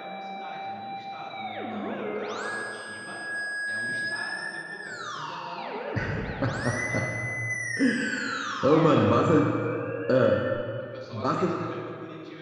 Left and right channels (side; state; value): both; identical; correlation 1.00